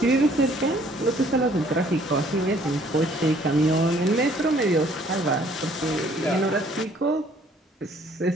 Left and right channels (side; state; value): both; normal; correlation 0.60